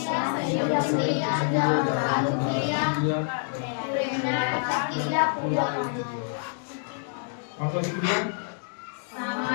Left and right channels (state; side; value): silent; right; 60 dB below the other